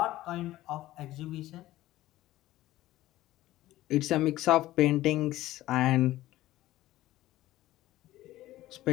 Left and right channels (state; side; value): quieter; right; 15.7 dB